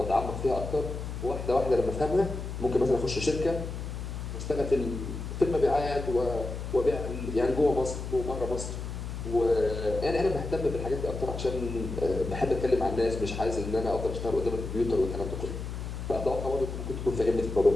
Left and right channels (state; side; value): noise; left; hum, 6 dB below the sound